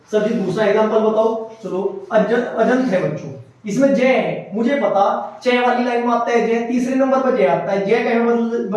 सर जी दूसरा एग्जांपल बताओ। चलो अजंत है बच्चों, इसमें जय है, मुझे पता चे वाली लाइन में आता है जय, तीसरे नंबर पर जय आता है, जय कहे में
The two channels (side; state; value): both; identical; correlation 1.00